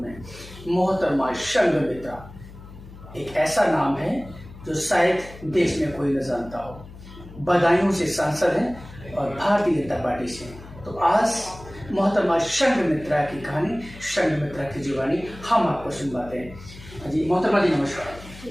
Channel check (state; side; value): noise; left; hum, 17 dB below the sound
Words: में मोहतरमा संघमित्रा एक ऐसा नाम है जो शायद देश में कोई न जानता हो। बदायूं से सांसद हैं और भारतीय जनता पार्टी से। तो आज मोहतरमा संघमित्रा की कहानी, संघमित्रा की जुबानी हम आपको सुनवाते हैं। जी मोहतरमा जी, नमस्कार।